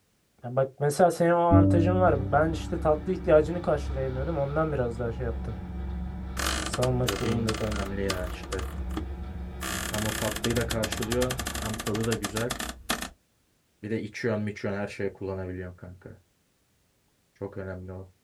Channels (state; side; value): identical; both; correlation 1.00